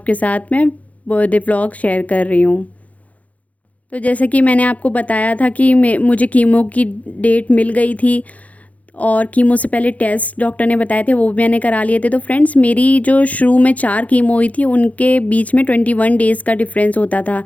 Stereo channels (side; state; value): right; late; 0.069 ms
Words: साथ में बर्थडे व्लॉग शेयर कर रही हूँ। तो जैसे कि मैंने आपको बताया था कि मुझे कीमो की डेट मिल गई थी, और कीमो से पहले टेस्ट डॉक्टर ने बताए थे, वो भी मैंने करा लिए थे। तो फ्रेंड्स, मेरी जो शुरू में 4 कीमो हुई थी, उनके बीच में 21 डेज़ का डिफरेंस होता था।